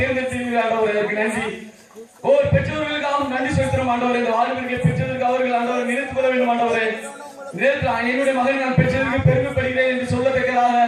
தேர்ந்தெடுத்தீர்கள் ஆண்டவரே. அதுக்கு நன்றி. ஒவ்வொரு பெற்றோர்களுக்காகவும் நன்றி செலுத்துறோம் ஆண்டவரே. இந்த வாலிபர்களை பெற்றதற்கு அவர்கள் ஆண்டவரை நினைத்து கொள்ள வேண்டும் ஆண்டவரே. என்னுடைய மகன் நான் பெற்றதற்கு பெருமைப்படுகிறேன் என்று சொல்லத்தக்கதாக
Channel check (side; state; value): both; identical; correlation 1.00